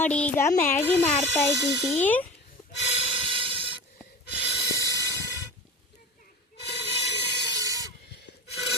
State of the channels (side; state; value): both; normal; correlation 0.32